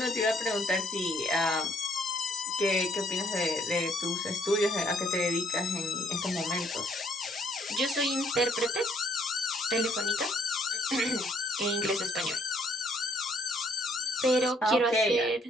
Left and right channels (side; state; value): both; normal; correlation 0.67